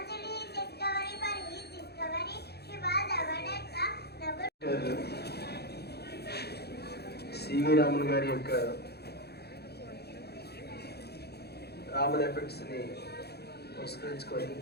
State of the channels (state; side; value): late; right; 0.47 ms